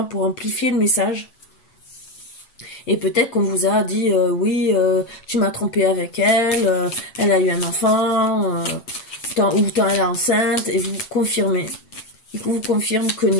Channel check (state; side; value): late; right; 8.1 ms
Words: pour amplifier le message. Et peut-être qu'on vous a dit, oui, tu m'as trompé avec elle, elle a eu un enfant, ou tant elle est enceinte, et vous confirmez. Il vous confirme que